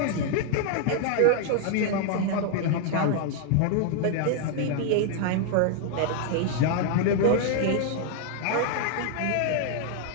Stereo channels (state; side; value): different; both; correlation 0.00